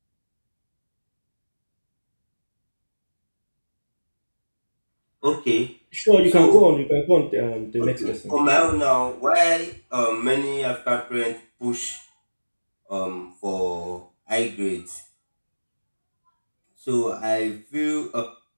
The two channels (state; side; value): inverted; both; correlation -1.00